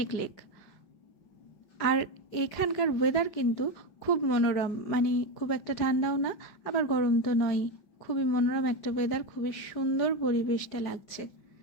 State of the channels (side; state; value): right; late; 5.3 ms